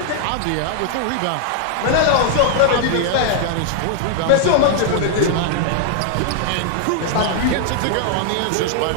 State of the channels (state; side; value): different; both; correlation -0.01